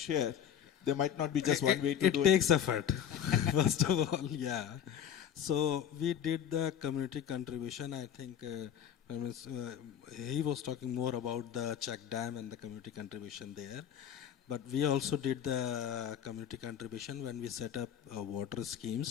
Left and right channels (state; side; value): quieter; right; 9.2 dB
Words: there might not be just one way to do it. It takes effort, first of all, yeah. So we did the community contribution. I think he was talking more about the check dam and the community contribution there. But we also did the community contribution when we set up water